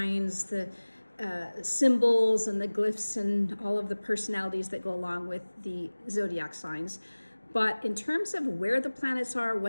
the symbols and the glyphs and all of the personalities that go along with the zodiac signs. But in terms of where the planets are,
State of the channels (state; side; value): inverted; both; correlation -1.00